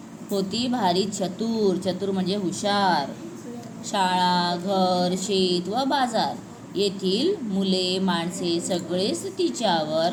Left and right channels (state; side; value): identical; both; correlation 1.00